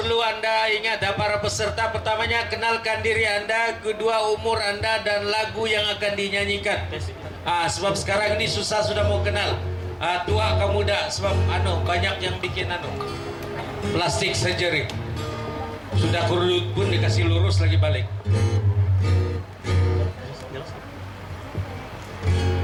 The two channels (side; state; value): both; identical; correlation 1.00